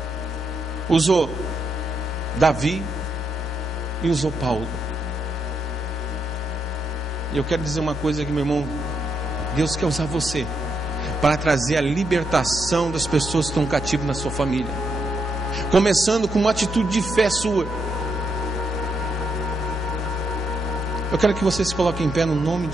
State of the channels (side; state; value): both; normal; correlation 0.79